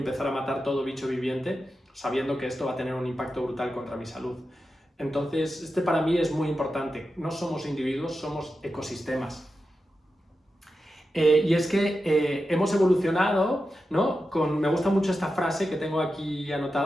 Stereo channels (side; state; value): both; normal; correlation 0.90